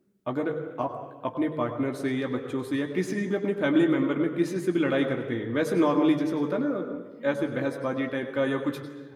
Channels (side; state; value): both; identical; correlation 1.00